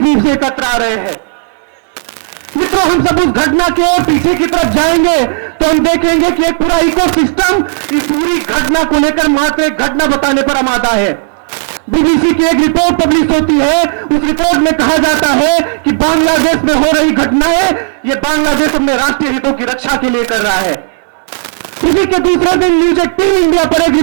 रूप से एकत्र आ रहे हैं। मित्रों, हम सब उस घटना के और पीछे की तरफ जाएंगे तो हम देखेंगे कि एक पूरा इकोसिस्टम इस पूरी घटना को लेकर मात्र एक घटना बताने पर आमादा है। बीबीसी की एक रिपोर्ट पब्लिश होती है, उस रिपोर्ट में कहा जाता है कि बांग्लादेश में हो रही घटनाएं ये बांग्लादेश अपने राष्ट्रीय हितों की रक्षा के लिए कर रहा है। इसी के दूसरे दिन न्यूज 18 इंडिया पर एक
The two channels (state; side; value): silent; left; digital silence